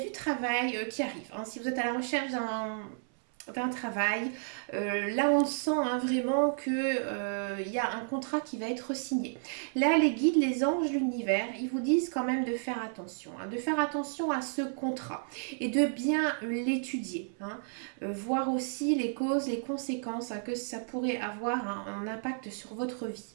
travail qui arrive. Si vous êtes à la recherche d'un travail, là on sent vraiment que il y a un contrat qui va être signé. Là les guides, les anges, l'univers, ils vous disent quand même de faire attention, de faire attention à ce contrat et de bien l'étudier, voir aussi les causes, les conséquences que ça pourrait avoir un impact sur votre vie.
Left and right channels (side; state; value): left; silent; 57 dB below the other